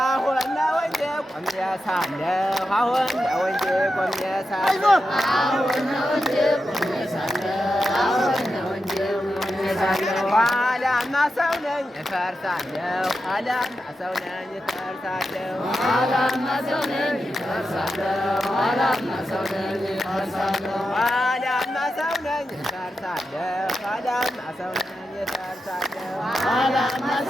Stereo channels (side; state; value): both; normal; correlation 0.89